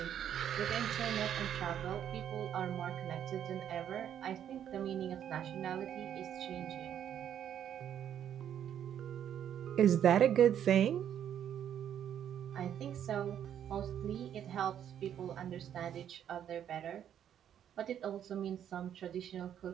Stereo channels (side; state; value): left; quieter; 9.7 dB